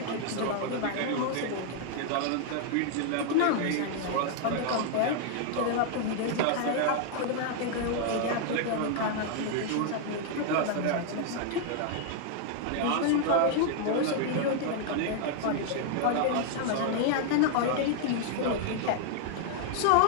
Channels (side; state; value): both; different; correlation 0.00